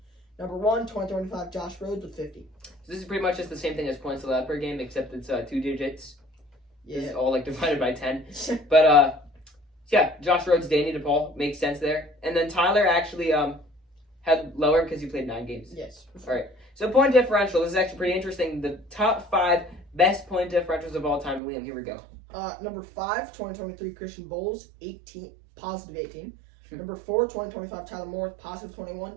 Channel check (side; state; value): left; drops out; at 21.4 s